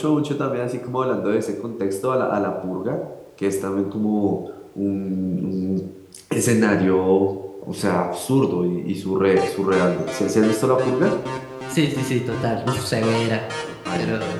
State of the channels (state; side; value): identical; both; correlation 1.00